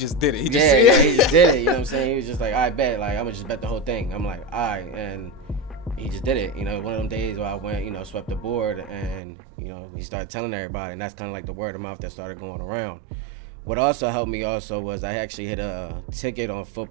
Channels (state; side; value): drops out; left; at 9.2 s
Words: did it. He just did it. You know what I'm saying? He was just like, I bet. Like, I'm gonna just bet the whole thing. I'm like, all right. And he just did it. One of them days where I went, swept the board, and he started telling everybody, and that's kind of like the word of mouth that started going around. What also helped me was I actually hit a ticket on